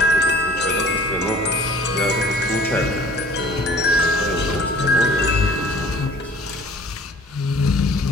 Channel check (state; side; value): normal; both; correlation 0.50